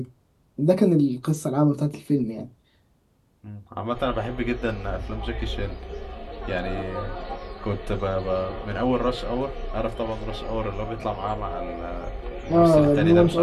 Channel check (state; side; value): identical; both; correlation 1.00